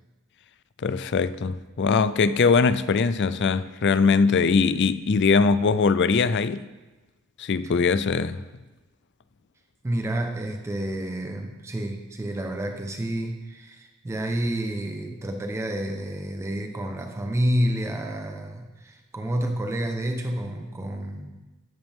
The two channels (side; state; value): right; quieter; 3.3 dB